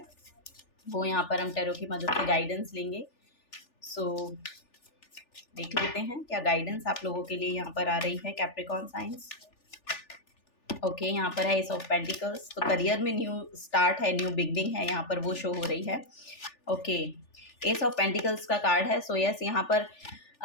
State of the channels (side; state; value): right; late; 3.4 ms